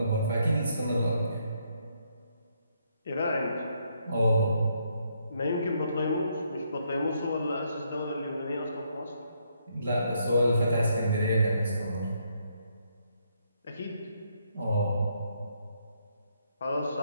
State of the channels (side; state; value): both; inverted; correlation -0.74